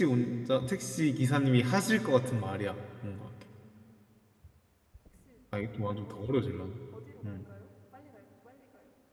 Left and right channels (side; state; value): both; identical; correlation 1.00